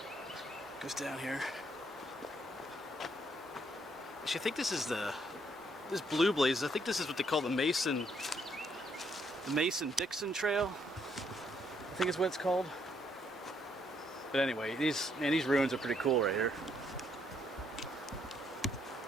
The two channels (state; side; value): normal; both; correlation 0.72